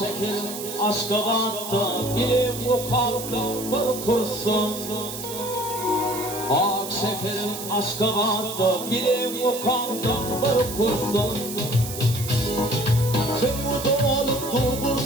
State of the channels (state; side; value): noise; right; hiss, 9 dB below the sound